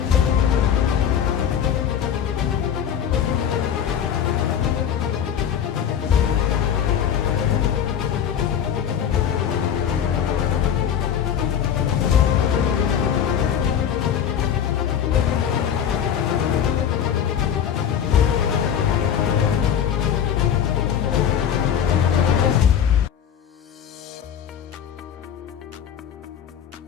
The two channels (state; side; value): quieter; right; 8.8 dB